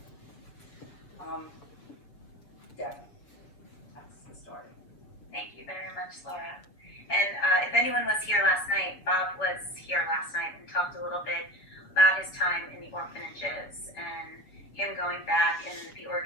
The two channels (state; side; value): late; right; 6.9 ms